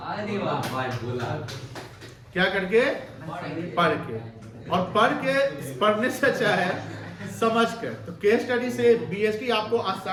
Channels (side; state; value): both; identical; correlation 1.00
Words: वाह भाई बोला। क्या करके? पढ़ के। और पढ़ के, पढ़ने से अच्छा है समझ कर। तो केस स्टडी से बीएसटी आपको